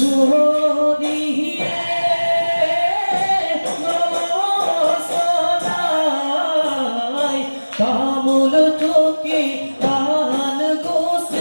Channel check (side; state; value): both; inverted; correlation -1.00